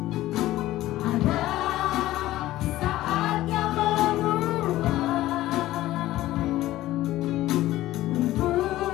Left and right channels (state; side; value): quieter; right; 15.6 dB